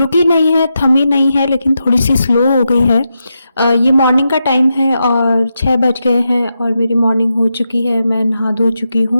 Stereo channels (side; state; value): both; inverted; correlation -0.87